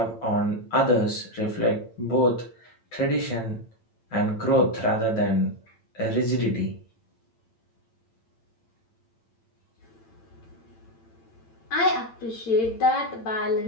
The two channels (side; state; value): right; late; 8.9 ms